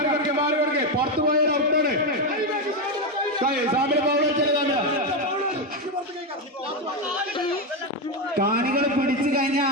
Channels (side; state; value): both; normal; correlation 0.08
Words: പുറത്തു പോയാൽ ഔട്ടാണ്. കാണികൾ പിടിച്ചു കഴിഞ്ഞ